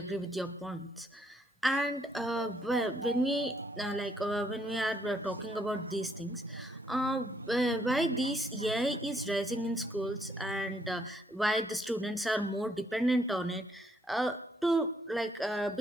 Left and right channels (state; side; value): normal; both; correlation 0.71